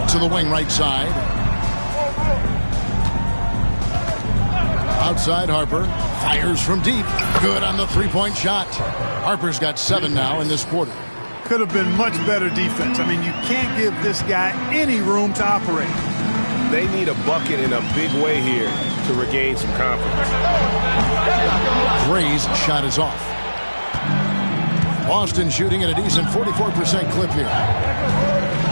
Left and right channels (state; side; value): inverted; both; correlation -1.00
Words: To the wing right side. Outside Harper. Fires from deep. Good on the three-point shot. Harper's got 7 now in this quarter. Could have been much better defense. I mean, you can't give this guy any room to operate. They need a bucket in a big way here to regain some confidence. Gray's shot is off. Boston shooting at a decent 44% clip here.